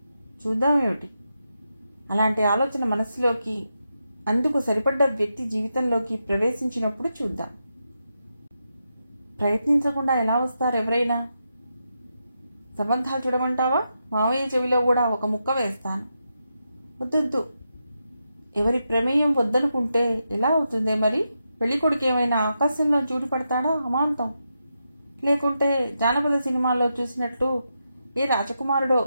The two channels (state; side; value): inverted; both; correlation -0.86